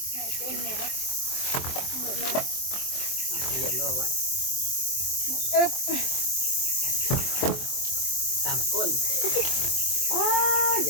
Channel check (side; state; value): right; late; 23 ms